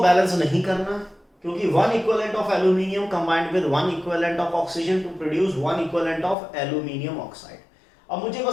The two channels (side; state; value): right; drops out; at 6.4 s